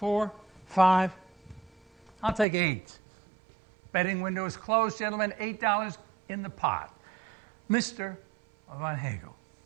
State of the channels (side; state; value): left; drops out; at 2.5 s